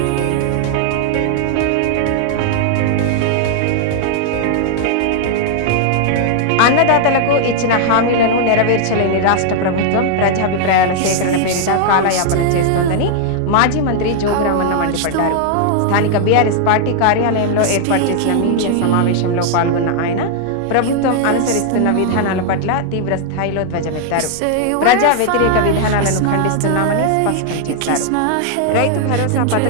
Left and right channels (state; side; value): different; both; correlation -0.01